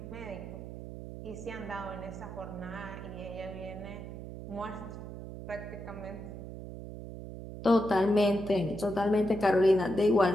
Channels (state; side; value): noise; right; hum, 10 dB below the sound